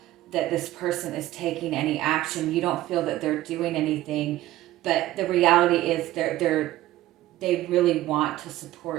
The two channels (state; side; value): quieter; left; 15.5 dB